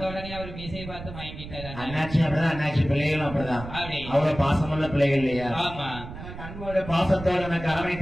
உடனே அவர் மீசையை பார்த்து வாங்கிட்டாரு. அண்ணாச்சி அப்படிதான், அண்ணாச்சி பிள்ளைகளும் அப்படிதான். அவ்வளவு பாசமுள்ள பிள்ளைகள் இல்லையா? அன்போட பாசத்தோடு எனக்கு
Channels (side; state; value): right; noise; rumble, 12 dB below the sound